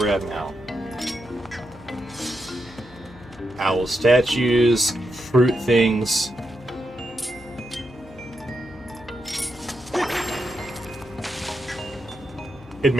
we're at now. Owl statues, fruit things. It'd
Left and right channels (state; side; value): noise; left; hum, 22 dB below the sound